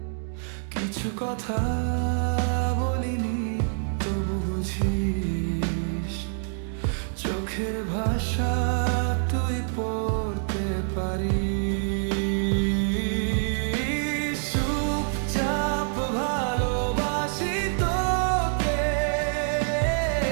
কিছু কথা বলিনি তবু বুঝিস, চোখের ভাষা তুই পড়তে পারিস। চুপচাপ ভালোবাসি তোকে,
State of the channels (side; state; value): left; silent; digital silence